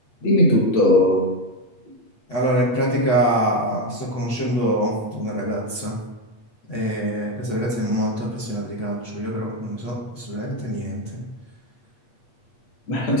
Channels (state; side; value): late; right; 8.4 ms